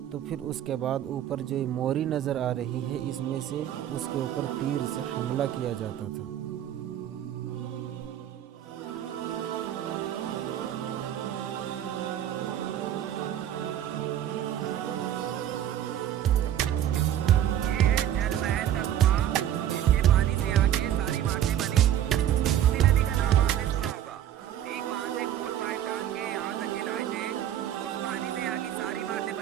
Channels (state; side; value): quieter; left; 11.0 dB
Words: तो फिर उसके बाद ऊपर जो मोरी नज़र आ रही है, इसमें से उसके ऊपर तीर से हमला किया जाता था।